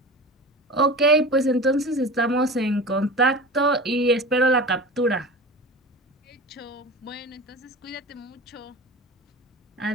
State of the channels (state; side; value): normal; both; correlation 0.33